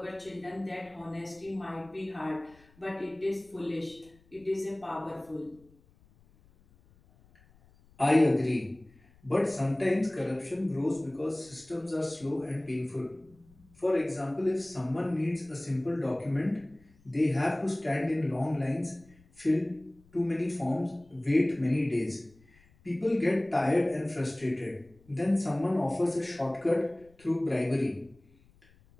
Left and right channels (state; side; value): noise; left; rumble, 29 dB below the sound